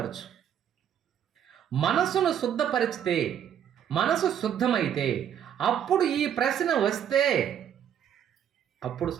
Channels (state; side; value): quieter; left; 9.3 dB